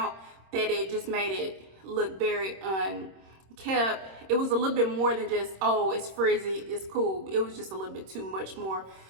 that it just made it look very unkept. It was a little bit more than just, oh, it's frizzy, it's cool. It was just a little bit too much more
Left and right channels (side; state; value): left; late; 26 ms